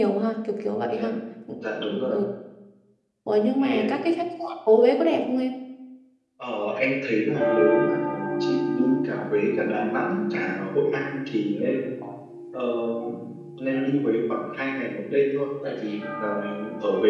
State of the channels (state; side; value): identical; both; correlation 1.00